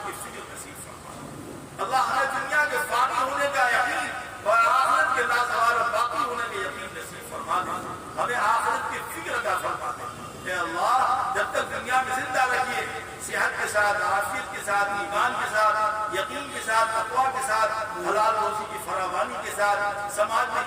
کی فکر نصیب فرما۔ اللہ ہمیں دنیا کے فانی ہونے کا یقین اور آخرت کے لازوال و باقی ہونے کے یقین نصیب فرما دے۔ ہمیں آخرت کی فکر عطا فرما دے۔ اے اللہ جب تک دنیا میں زندہ رکھیے، صحت کے ساتھ، عافیت کے ساتھ، ایمان کے ساتھ، یقین کے ساتھ، تقویٰ کے ساتھ، حلال روزی کی فراوانی کے ساتھ، سماج میں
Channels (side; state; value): both; identical; correlation 1.00